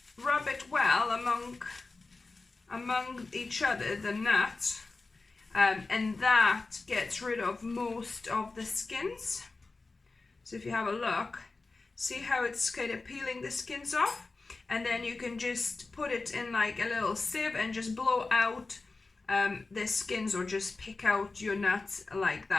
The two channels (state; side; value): quieter; right; 3.7 dB